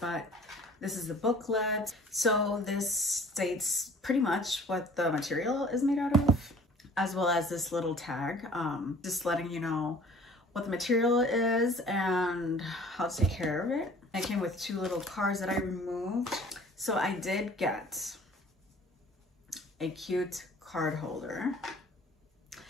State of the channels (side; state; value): both; normal; correlation 0.50